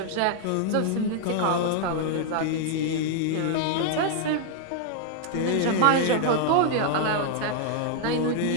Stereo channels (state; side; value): different; both; correlation -0.01